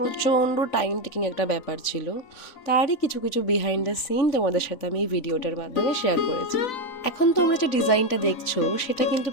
টাইম টেকিং একটা ব্যাপার ছিল। তারই কিছু কিছু বিহাইন্ড দ্য সিন তোমাদের সাথে আমি এই ভিডিওটার মাধ্যমে শেয়ার করেছি। এখন তোমরা যে ডিজাইনটা দেখছো সেটা কিন্তু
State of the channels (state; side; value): late; right; 3.5 ms